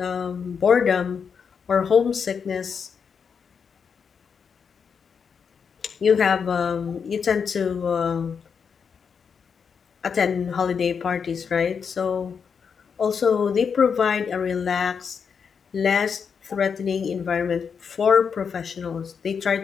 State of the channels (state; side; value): quieter; right; 6.4 dB